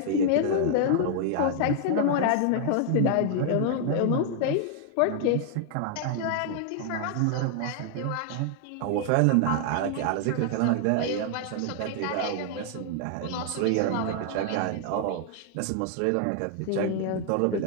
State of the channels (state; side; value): different; both; correlation 0.00